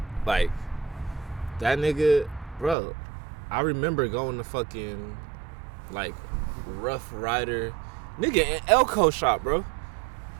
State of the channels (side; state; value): left; drops out; at 2.8 s